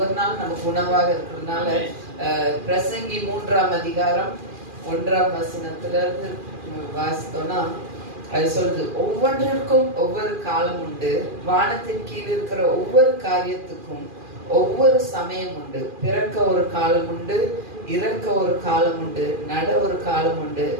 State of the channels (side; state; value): left; late; 2.4 ms